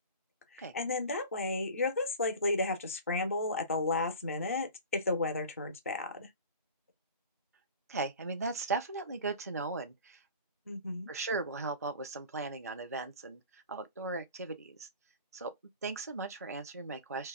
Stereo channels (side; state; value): both; inverted; correlation -0.38